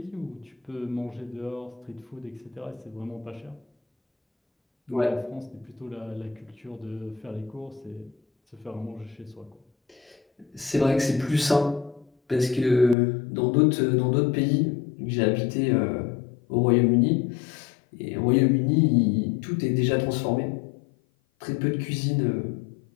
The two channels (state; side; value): drops out; right; at 13.0 s